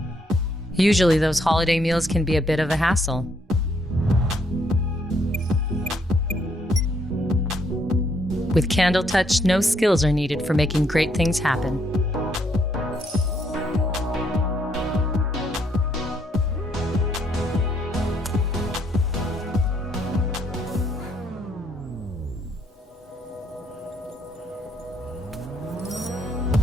Usually those holiday meals can be a bit of a hassle. With Candle Touch, no skills are needed for making great things happen.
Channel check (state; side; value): normal; both; correlation 0.71